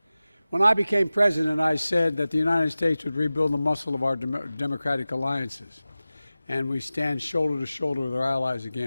When I became president, I said that the United States would rebuild the muscle of our democratic alliances, and we stand shoulder to shoulder with our allies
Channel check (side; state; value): both; inverted; correlation -0.96